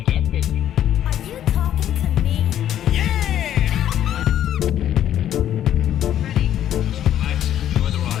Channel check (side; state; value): right; quieter; 11.0 dB